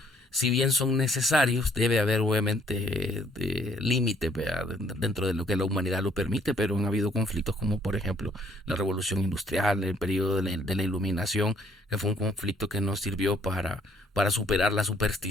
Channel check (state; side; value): normal; both; correlation 0.64